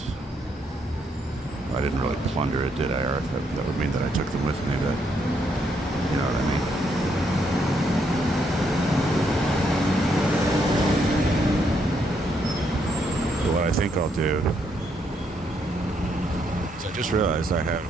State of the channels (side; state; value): both; normal; correlation 0.75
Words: I didn't really plunder it, did I? Or that would mean that I took them with me, but you know what I mean. But what I think I'll do is I just realized I have